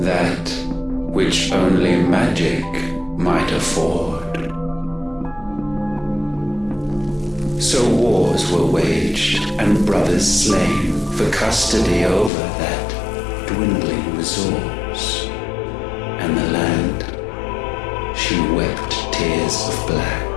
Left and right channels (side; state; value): right; drops out; at 12.3 s